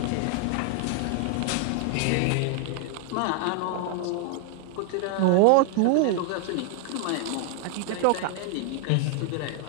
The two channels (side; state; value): both; different; correlation 0.00